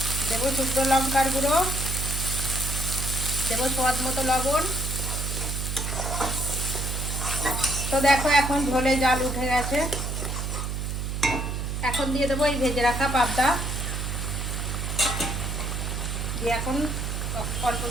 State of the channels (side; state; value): right; noise; hum, 3 dB below the sound